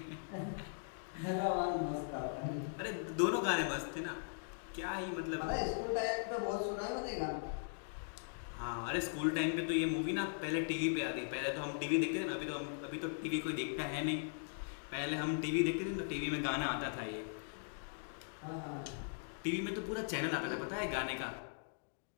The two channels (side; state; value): right; silent; digital silence